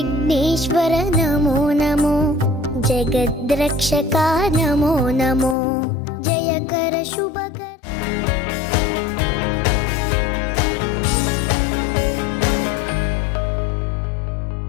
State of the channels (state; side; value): drops out; right; at 5.6 s